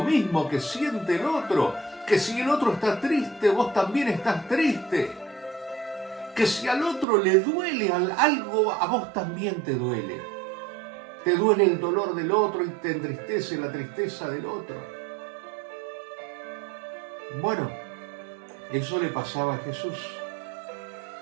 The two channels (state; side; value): drops out; left; at 7.1 s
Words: que siente el otro, que si el otro está triste, vos también estás triste, que si al otro le duele algo, a vos también te duele el dolor del otro y te entristece la tristeza del otro. Bueno, eso le pasaba a Jesús,